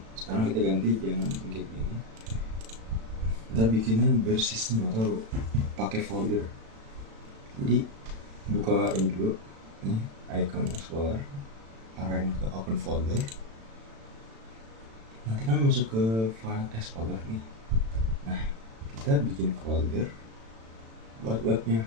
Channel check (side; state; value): left; late; 36 ms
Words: Sekarang kita ganti, jangan bikin kayak gini, kita bikinnya bersistem atau pakai folder. Jadi buka ini dulu nih, icon explorer, arahin ke open folder, nanti kan masuk ke file explorer nih. Nah, kita bikin folder buat